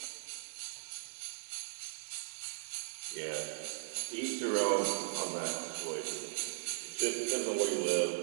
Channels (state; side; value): silent; left; digital silence